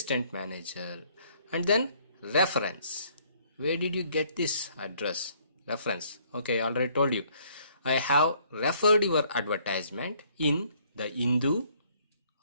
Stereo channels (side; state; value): both; inverted; correlation -0.63